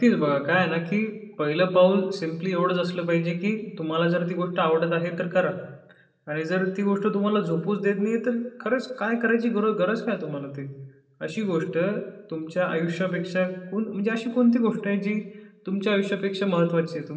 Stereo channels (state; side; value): identical; both; correlation 1.00